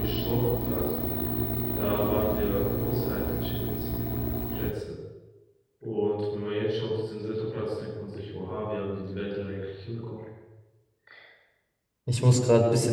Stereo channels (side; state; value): both; identical; correlation 1.00